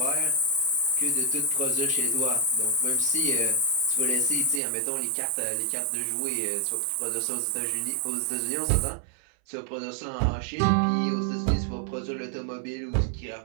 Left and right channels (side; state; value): left; drops out; at 4.6 s